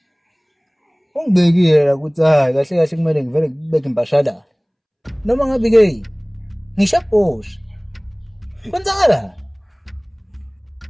Ungibekile la ukuthi hayi kahle kahle kumele ngivele ngibeke impashalala. Noma ngabe ke ngisho bosha. Kwenzakala?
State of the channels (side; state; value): both; identical; correlation 1.00